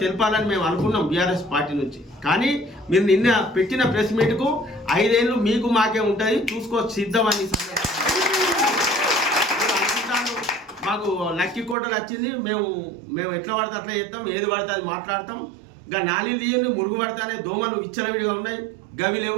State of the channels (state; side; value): drops out; left; at 11.8 s